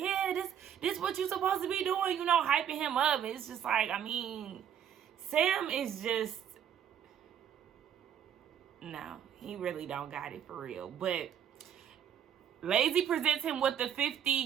this what you supposed to be doing, you know, hyping him up. It's just like, I mean, Sam is just, no, he really don't got it for real. But Lazy presents him with the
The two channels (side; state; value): left; quieter; 9.2 dB